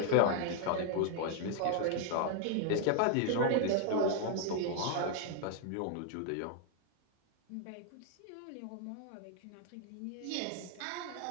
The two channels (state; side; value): different; both; correlation 0.00